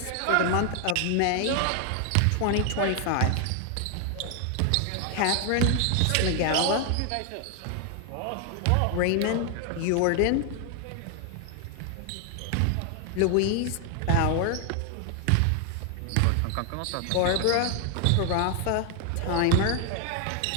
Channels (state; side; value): different; both; correlation 0.00